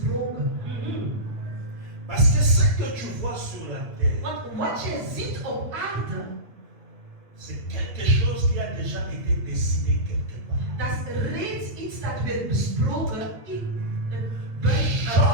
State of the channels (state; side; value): late; left; 8.9 ms